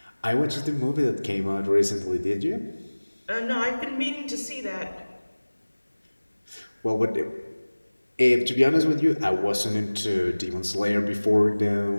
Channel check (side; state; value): both; inverted; correlation -1.00